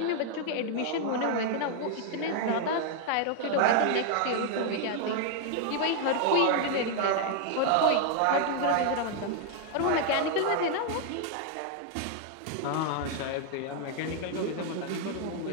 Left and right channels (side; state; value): both; different; correlation 0.00